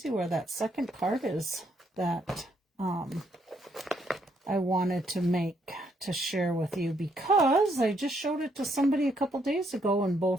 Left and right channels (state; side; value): normal; both; correlation 0.73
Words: where that second card is that I wanted to share with you, because I just showed it to somebody a couple days ago and